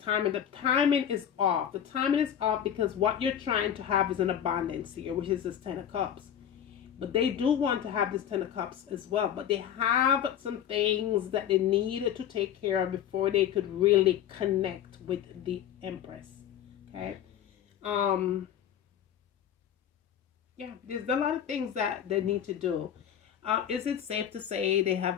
timing. The timing is off. The timing is off because what you're trying to have is an abundance here, which is this Ten of Cups. But they do want to have this Ten of Cups as well. But they have some things that they need to take care of before they could really connect with the Empress. Okay. Yeah, there's a lot of things that they need to do. Is it safe to say they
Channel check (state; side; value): quieter; right; 9.7 dB